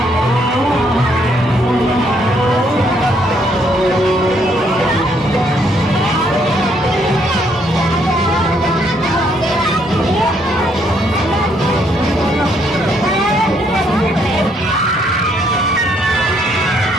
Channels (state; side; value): normal; both; correlation 0.70